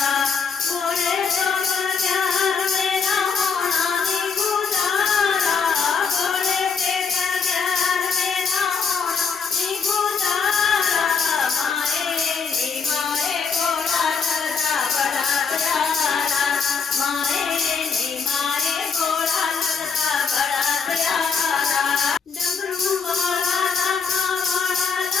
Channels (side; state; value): right; quieter; 5.8 dB